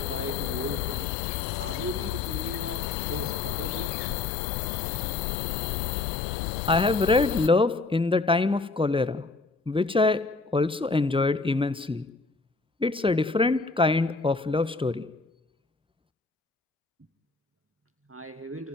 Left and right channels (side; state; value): right; quieter; 3.8 dB